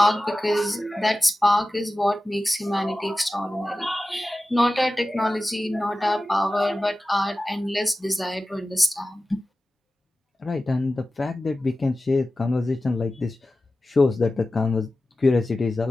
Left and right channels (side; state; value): both; normal; correlation 0.95